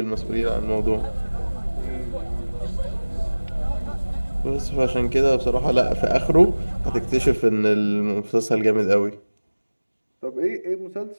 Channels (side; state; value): both; inverted; correlation -1.00